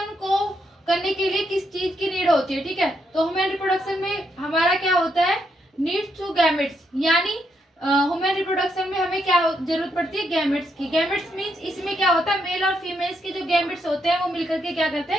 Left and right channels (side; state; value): both; normal; correlation 0.78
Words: को करने के लिए किस चीज की नीड होती है। ठीक है, तो ह्यूमन रिप्रोडक्शन में हमारा क्या होता है, नीड्स टू गैमेट्स, यानी ह्यूमन रिप्रोडक्शन में हमें क्या जरूरत पड़ती है, गैमेट्स की। गैमेट्स मीन्स इसमें क्या होता है, मेल और फीमेल्स के जो गैमेट्स होते हैं वो मिलकर के क्या करते